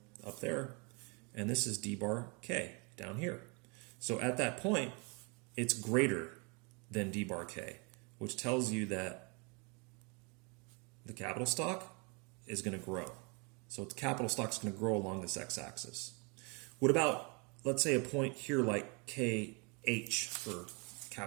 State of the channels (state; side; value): quieter; left; 32.0 dB